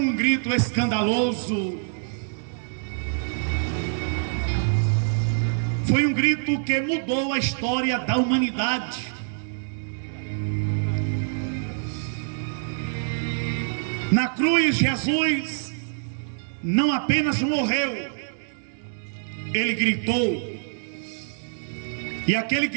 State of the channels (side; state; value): left; silent; digital silence